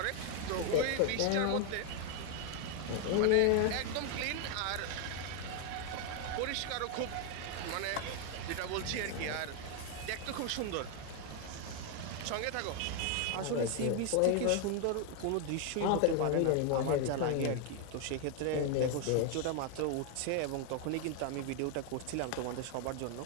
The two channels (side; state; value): both; different; correlation 0.01